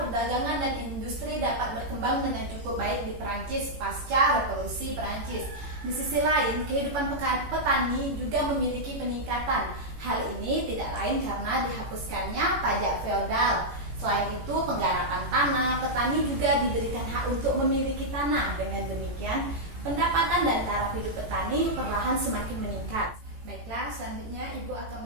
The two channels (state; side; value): late; left; 18 ms